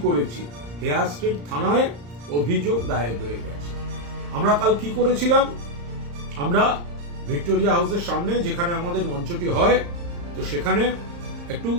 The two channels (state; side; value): late; left; 35 ms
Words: করেছি। হেয়ার স্ট্রিট থানায় অভিযোগ দায়ের হয়ে গেছে। আমরা কাল কি করেছিলাম? আমরা ভিক্টোরিয়া হাউসের সামনে যেখানে আমাদের মঞ্চটি হয়, তো সেখানে একটু